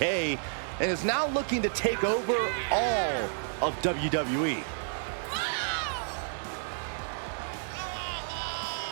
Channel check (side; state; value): left; silent; 57 dB below the other